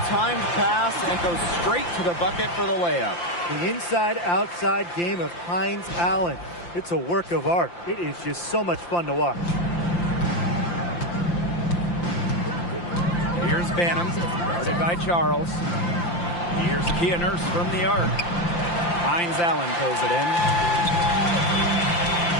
pass and goes straight to the bucket for the layup. The inside-outside game of Hines Allen. It's a work of art. It is just so much fun to watch. Here's Banham, guarded by Charles. Here's Kia Nurse from the arc. Hines Allen pulls it in.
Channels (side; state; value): right; late; 5.8 ms